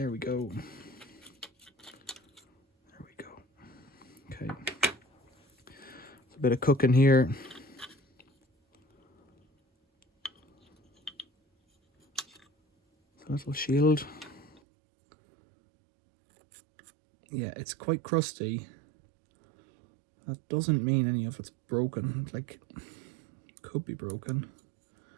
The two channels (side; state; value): left; drops out; at 14.6 s